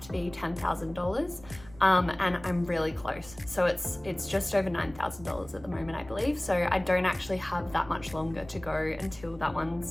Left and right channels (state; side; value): noise; right; rumble, 19 dB below the sound